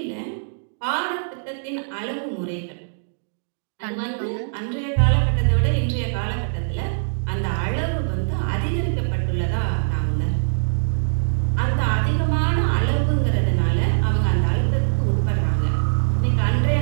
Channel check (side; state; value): left; silent; digital silence